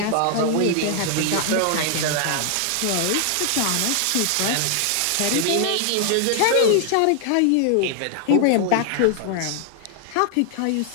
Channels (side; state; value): both; different; correlation 0.00